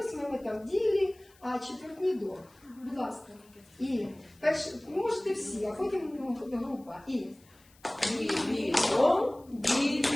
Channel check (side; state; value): left; noise; hiss, 29 dB below the sound